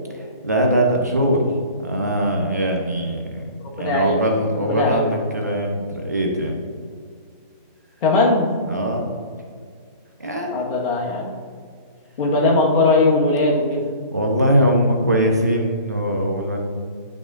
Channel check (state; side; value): inverted; both; correlation -0.41